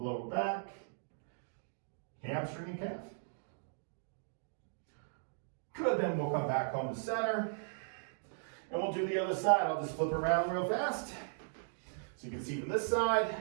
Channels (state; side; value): silent; left; digital silence